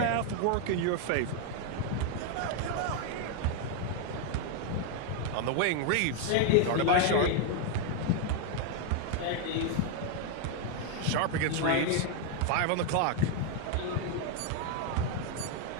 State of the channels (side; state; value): both; different; correlation 0.00